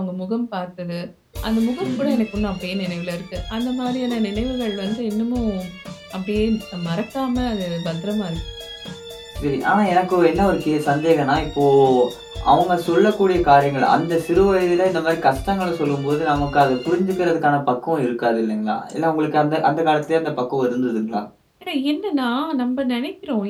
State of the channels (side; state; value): both; identical; correlation 1.00